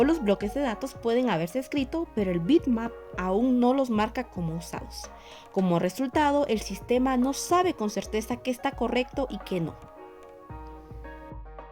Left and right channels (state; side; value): identical; both; correlation 1.00